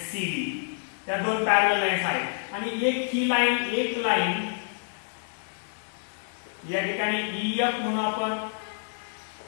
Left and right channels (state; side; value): silent; right; digital silence